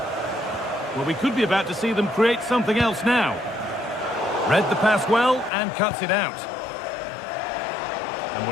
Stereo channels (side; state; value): right; drops out; at 5.5 s